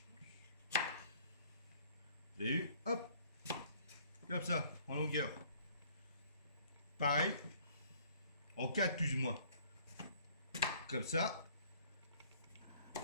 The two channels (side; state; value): both; inverted; correlation -0.58